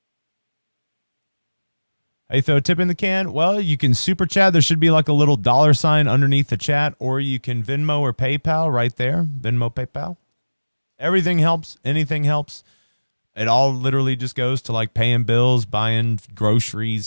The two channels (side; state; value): both; inverted; correlation -1.00